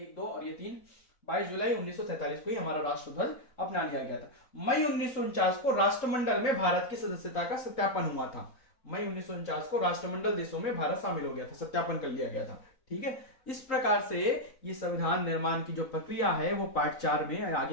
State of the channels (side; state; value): right; late; 4.0 ms